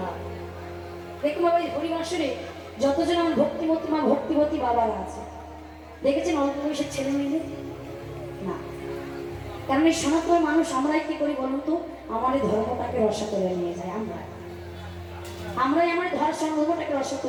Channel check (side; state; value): both; identical; correlation 1.00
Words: দেখুন বাবা এই হরিবাসরে যতজন আমার ভক্তিমতী মা ভক্তিবতী বাবারা আছে দেখেছেন অল্প বয়সের ছেলে মেয়েদের না কারণ এই সনাতন মানুষ আমরাই কি করি বলুন তো আমার এই ধর্মটাকে রসা করে নিয়ে যায় আমরাই আমার ধর্মটাকে রসা